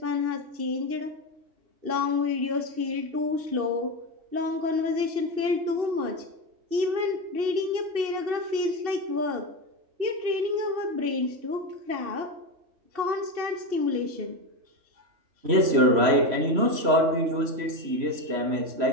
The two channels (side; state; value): left; late; 3.0 ms